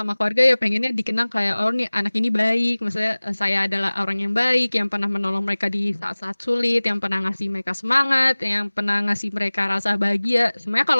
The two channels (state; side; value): inverted; both; correlation -1.00